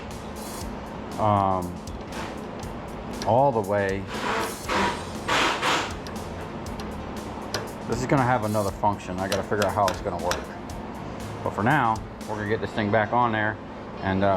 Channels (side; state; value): both; identical; correlation 1.00